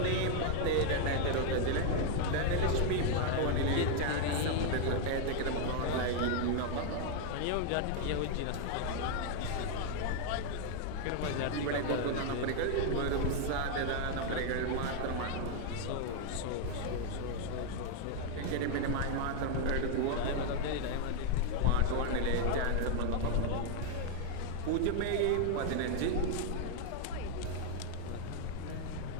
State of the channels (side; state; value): both; different; correlation 0.00